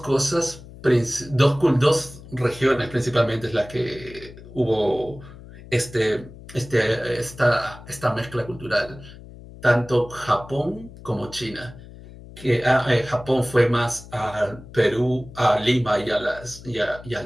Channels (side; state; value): left; noise; hum, 17 dB below the sound